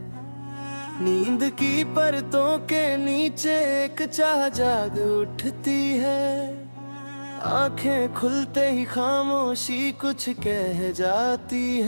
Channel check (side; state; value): both; inverted; correlation -1.00